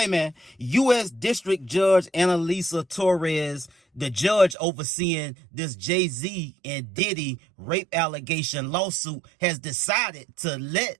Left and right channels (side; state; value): left; drops out; at 4.5 s